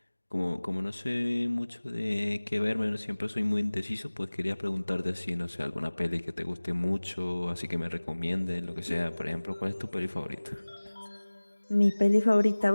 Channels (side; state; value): both; inverted; correlation -1.00